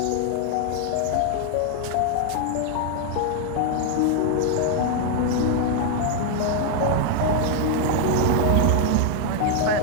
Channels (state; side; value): different; both; correlation 0.00